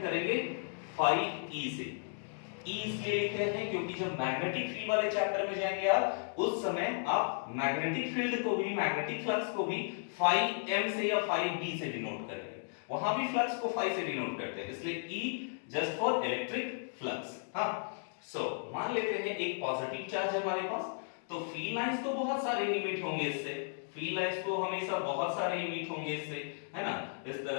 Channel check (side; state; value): right; silent; digital silence